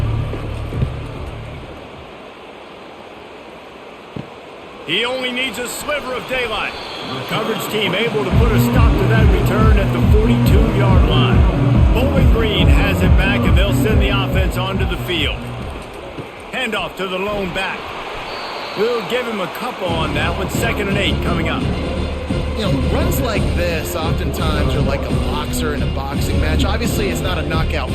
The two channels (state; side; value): identical; both; correlation 1.00